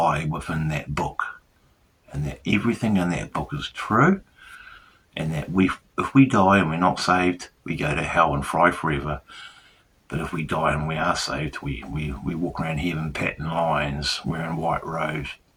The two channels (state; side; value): identical; both; correlation 1.00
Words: within that book, and that everything in that book is true, and that if we die and we're not saved, we go to hell and fry forever. But if we die and we are saved, we walk around heaven patting lions, wearing white robes,